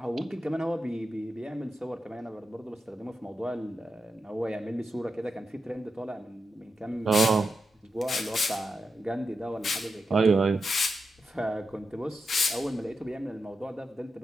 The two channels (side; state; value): both; normal; correlation 0.88